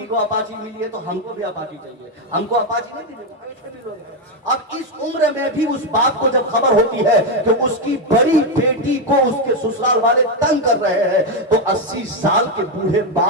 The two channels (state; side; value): normal; both; correlation 0.06